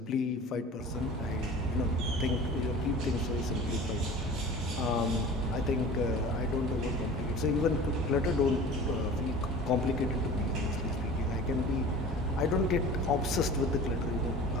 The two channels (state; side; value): normal; both; correlation 0.40